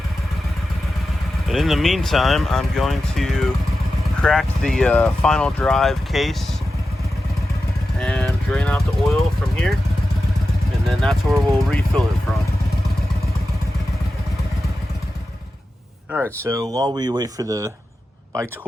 But in the meantime, I'm going to crack the final drive case and drain out the oil from here, and then that's where we'll refill it from. All right, so while we wait for the bike to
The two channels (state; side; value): normal; both; correlation 0.92